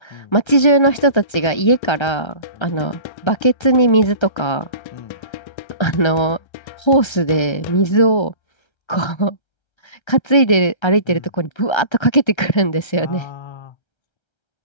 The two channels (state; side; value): late; right; 1.3 ms